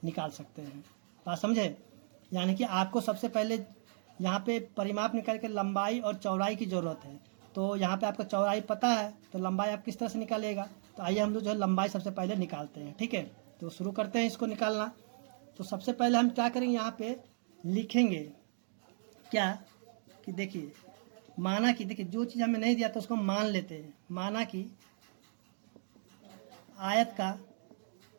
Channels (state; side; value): silent; left; digital silence